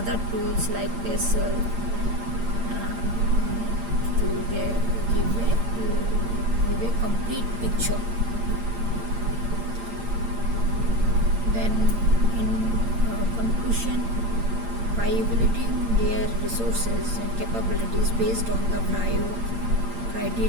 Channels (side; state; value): left; late; 8.7 ms